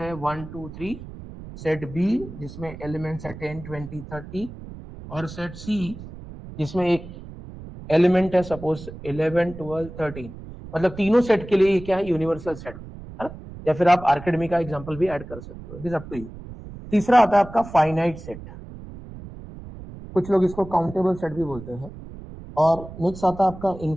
है 1 2 3, सेट बी जिसमें एलिमेंट्स है 10 20 30, और सेट सी जिसमें एक एलिमेंट है सपोज 11 12 13। मतलब तीनों सेट के लिए ये क्या है? यूनिवर्सल सेट, है ना। या फिर आप आर्किमिडीज का एग्जांपल भी ऐड कर सकते हो, it is up to you. तीसरा आता है आपका फाइनाइट सेट, कुछ लोग इसको काउंटेबल सेट भी बोलते हैं। और नेक्स्ट आता है आपका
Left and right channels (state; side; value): noise; right; rumble, 14 dB below the sound